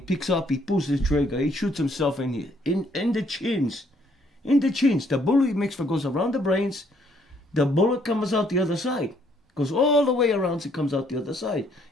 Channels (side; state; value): both; normal; correlation 0.67